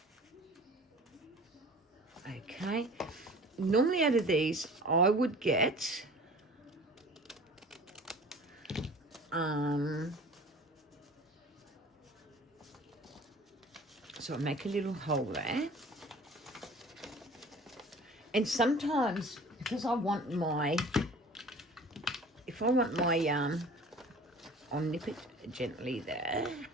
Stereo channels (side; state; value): both; normal; correlation 0.44